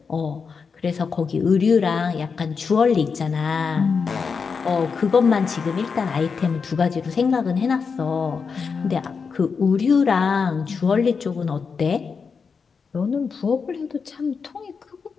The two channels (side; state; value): right; quieter; 5.5 dB